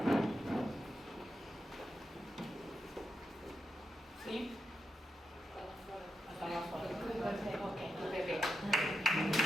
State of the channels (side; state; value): both; normal; correlation 0.86